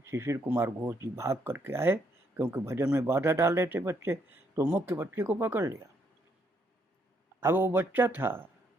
शिशिर कुमार घोष जी भाग करके आए, क्योंकि भजन में बाधा डाल रहे थे बच्चे, तो मुख्य बच्चे को पकड़ लिया। अब वो बच्चा था,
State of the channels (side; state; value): both; normal; correlation 0.73